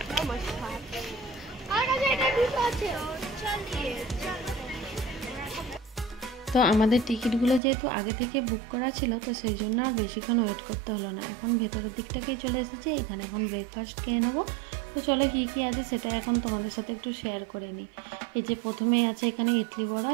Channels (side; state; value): left; drops out; at 7.6 s